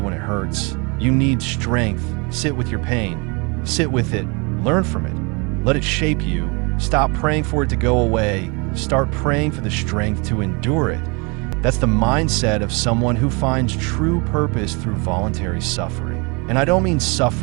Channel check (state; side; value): quieter; left; 30.4 dB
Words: it hurts, you need strength. Sit with your pain. Sit with it. Learn from it. Let it shape you. Stop praying for it to go away. Start praying for the strength to endure it. That's the mindset of someone who finds true purpose through voluntary suffering. And I don't mean